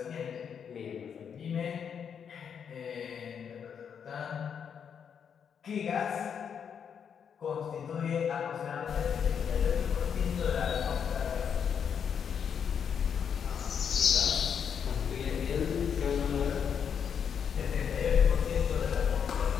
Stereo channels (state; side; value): quieter; right; 7.5 dB